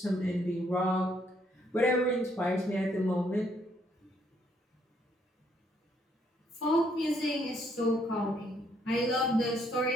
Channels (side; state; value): both; normal; correlation 0.70